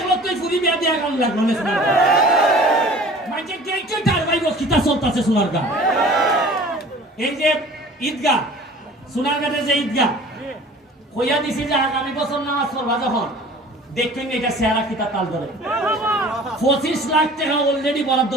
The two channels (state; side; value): normal; both; correlation 0.46